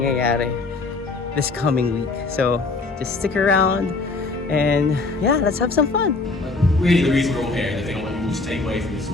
this coming week. So just stick around and yeah, let's have some fun. Really, the reason we're all here, and the thing I want you all to take away from this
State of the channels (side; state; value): right; quieter; 3.6 dB